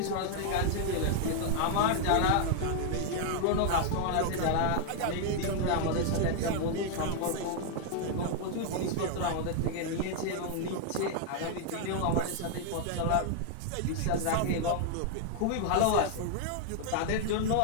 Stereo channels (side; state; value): both; different; correlation 0.00